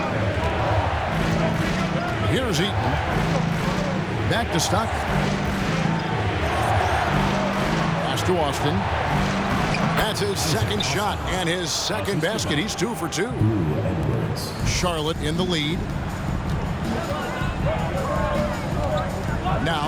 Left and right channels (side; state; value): both; identical; correlation 1.00